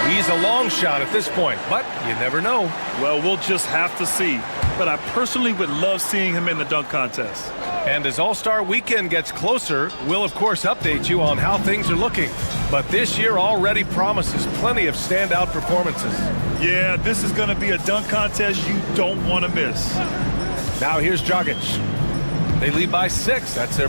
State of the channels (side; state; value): both; inverted; correlation -1.00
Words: He's a long shot at this point, but you never know. Well, we'll just have to see. But I personally would love seeing him in the dunk contest. And as All-Star Weekend gets closer, we'll of course update you on how things are looking. But this year already promises plenty of standout performances. Yeah, this is going to be a dunk contest you don't want to miss. Now here's Dragic. They lead by 6. That's